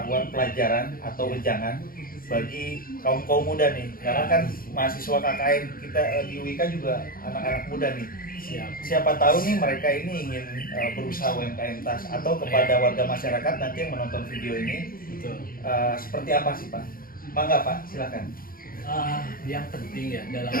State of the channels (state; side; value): late; right; 0.42 ms